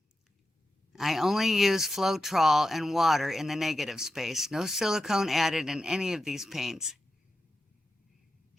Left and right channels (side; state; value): both; normal; correlation 0.90